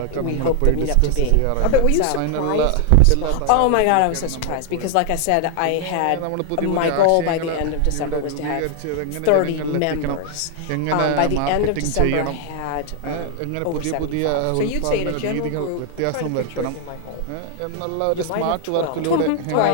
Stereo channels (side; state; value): both; different; correlation 0.00